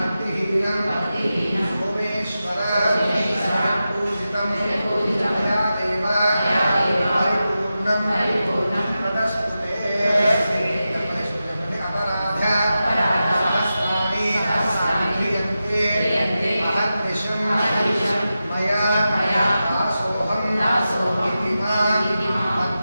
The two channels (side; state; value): both; inverted; correlation -0.92